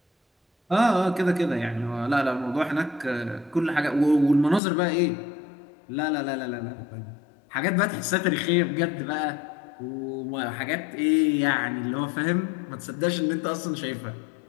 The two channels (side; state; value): right; drops out; at 4.6 s